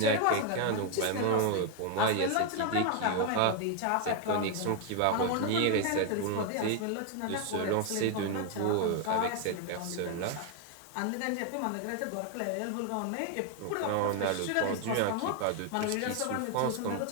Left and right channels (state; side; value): different; both; correlation 0.01